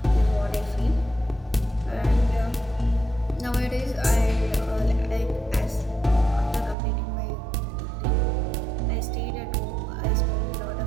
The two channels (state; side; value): drops out; left; at 6.8 s